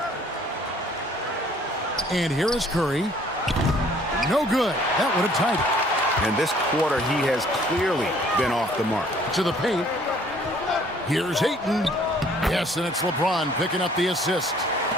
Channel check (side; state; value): both; normal; correlation 0.58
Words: And here is Curry. No good. That would have tied it. And this quarter, he has clearly been off the mark. To the paint. Here's Ayton. Yes, and it's LeBron picking up the assist.